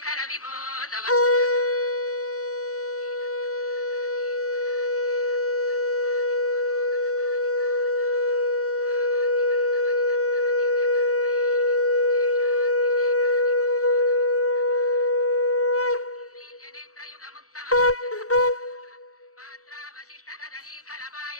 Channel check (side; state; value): right; late; 0.65 ms